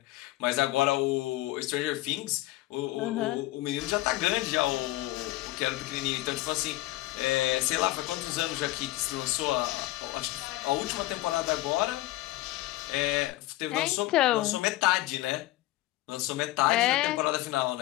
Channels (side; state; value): right; quieter; 17.4 dB